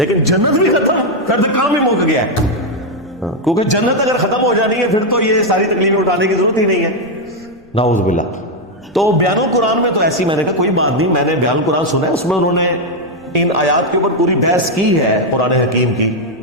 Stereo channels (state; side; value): noise; left; rumble, 29 dB below the sound